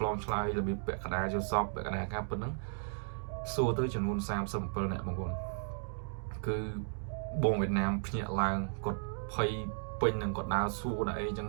លងឆ្លើយរបៀបពាក់កណ្ដាលចូលសពពាក់កណ្ដាលការពិតហ្នឹងសួរទៅចំនួន37នាក់បងប្អូនគឺបងវៀតណាមភ្ញាក់ឡើងគាត់ភ័យពេញនឹងគាត់ដើរសួរដល់អីចឹង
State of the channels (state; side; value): silent; left; digital silence